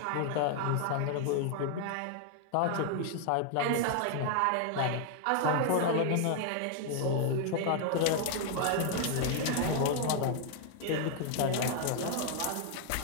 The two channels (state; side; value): different; both; correlation 0.00